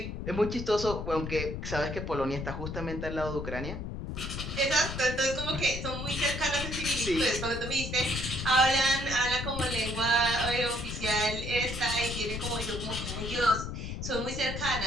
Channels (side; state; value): left; noise; rumble, 5 dB below the sound